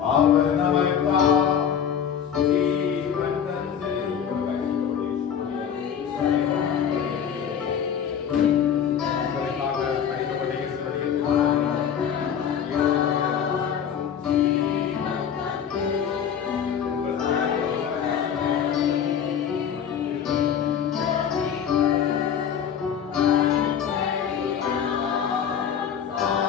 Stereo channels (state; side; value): quieter; right; 8.2 dB